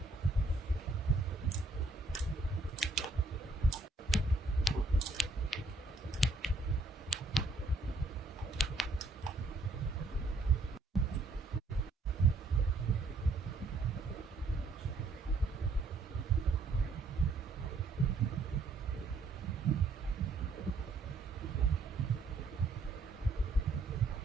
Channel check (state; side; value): quieter; left; 3.1 dB